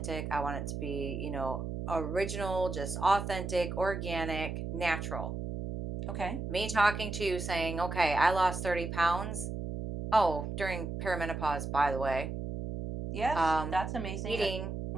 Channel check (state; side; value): noise; right; hum, 5 dB below the sound